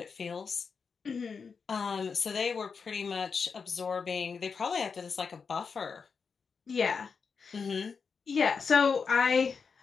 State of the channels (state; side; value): quieter; right; 5.5 dB